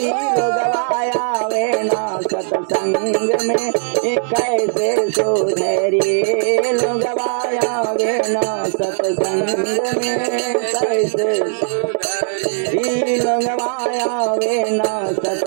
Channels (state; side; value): silent; left; 67 dB below the other